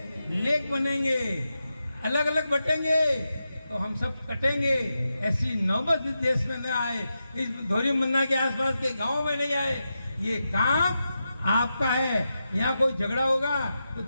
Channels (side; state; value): both; inverted; correlation -0.89